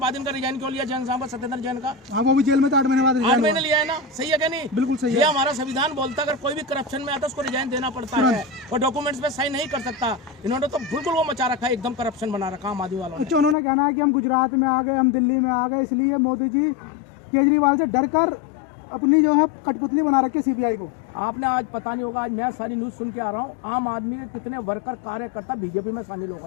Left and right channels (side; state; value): right; drops out; at 13.6 s